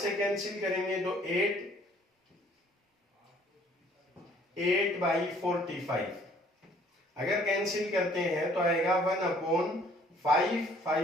कैंसिल करेंगे तो 8 बाई 45, अगर कैंसिल करते हैं तो आएगा 1 अपॉन 5,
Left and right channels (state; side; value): normal; both; correlation 0.59